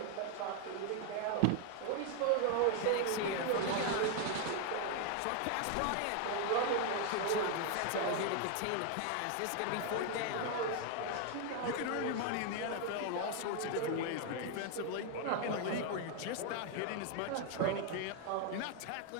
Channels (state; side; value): different; both; correlation 0.01